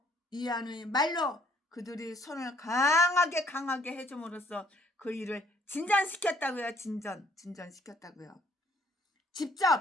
이한의 말로 그들이 손을 강하게 해줌으로써 그 일을 진전시켰다고요. 진전시켰다고요.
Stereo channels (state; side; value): normal; both; correlation 0.63